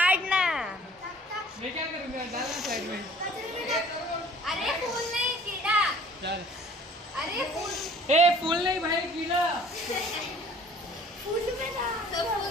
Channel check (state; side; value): normal; both; correlation 0.51